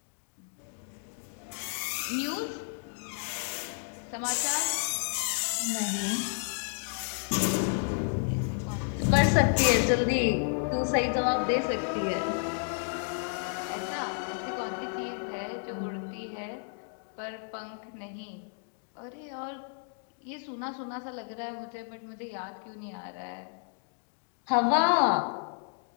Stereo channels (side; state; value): right; silent; 57 dB below the other